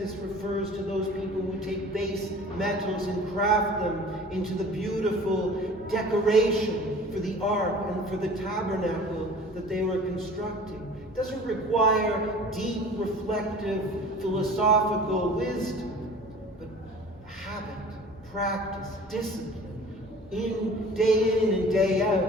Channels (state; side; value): normal; both; correlation 0.44